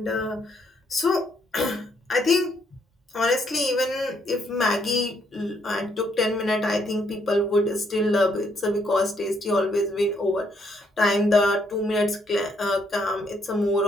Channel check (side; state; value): both; normal; correlation 0.72